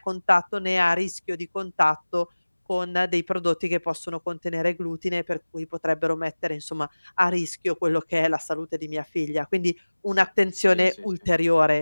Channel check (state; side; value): inverted; both; correlation -1.00